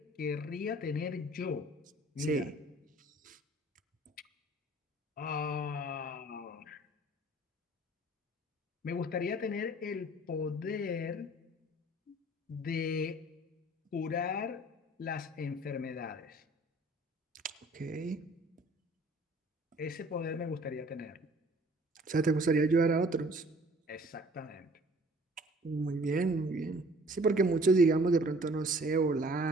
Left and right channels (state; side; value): normal; both; correlation 0.53